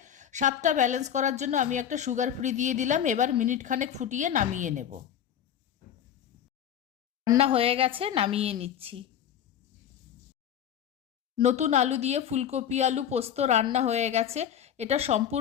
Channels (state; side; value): quieter; right; 9.5 dB